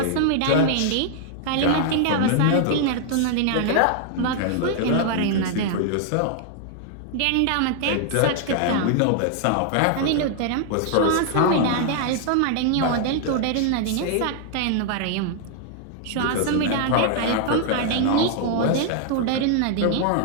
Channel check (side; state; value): both; different; correlation 0.00